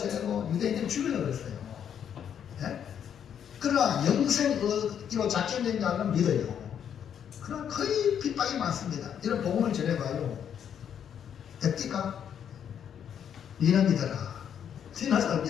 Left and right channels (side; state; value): right; quieter; 8.7 dB